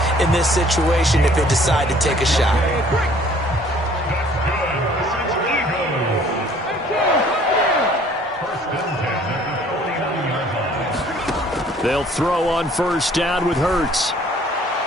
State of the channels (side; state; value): both; normal; correlation 0.56